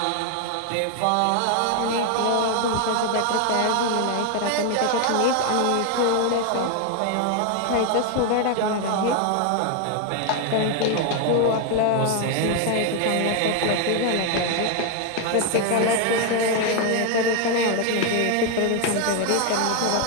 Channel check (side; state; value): both; different; correlation 0.00